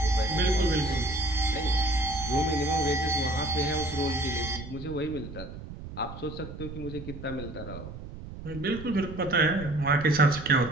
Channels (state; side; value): noise; right; rumble, 12 dB below the sound